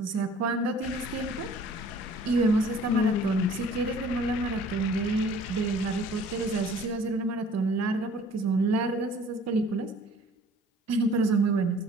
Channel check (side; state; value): both; normal; correlation 0.52